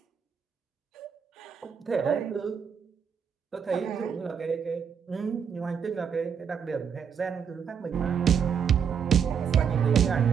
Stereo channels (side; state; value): left; quieter; 7.2 dB